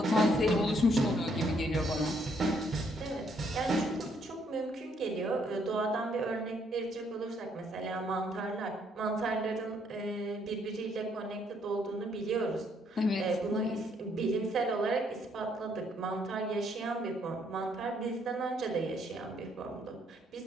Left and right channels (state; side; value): normal; both; correlation 0.70